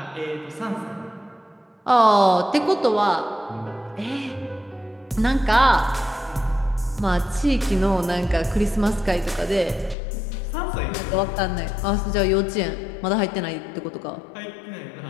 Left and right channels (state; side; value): drops out; right; at 10.0 s